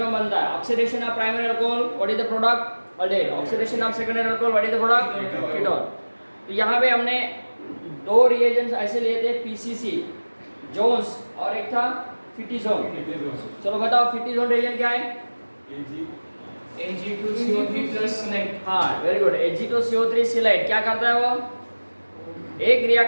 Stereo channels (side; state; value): both; inverted; correlation -1.00